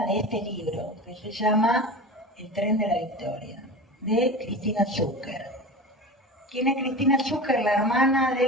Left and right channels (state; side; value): normal; both; correlation 0.31